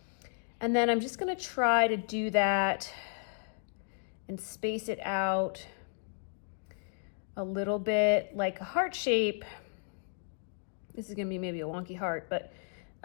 And then I'm just going to try to do that and space it out a little bit like a heart shape. This is going to be maybe a wonky heart, but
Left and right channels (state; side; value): silent; right; digital silence